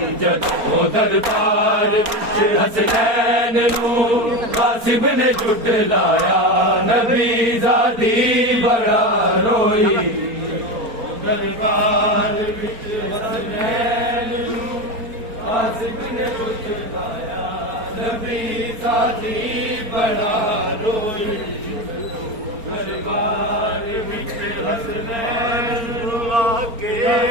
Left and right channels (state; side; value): late; left; 4.3 ms